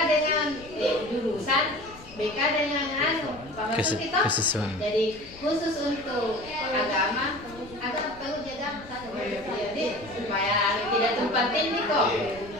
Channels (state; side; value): noise; left; rumble, 19 dB below the sound